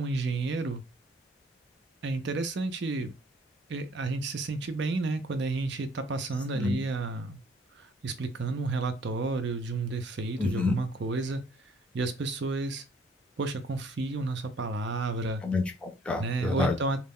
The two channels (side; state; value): both; normal; correlation 0.60